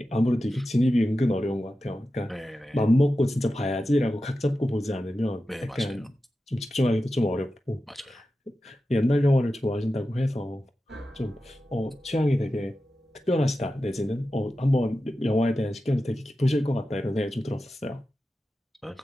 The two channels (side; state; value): both; normal; correlation 0.92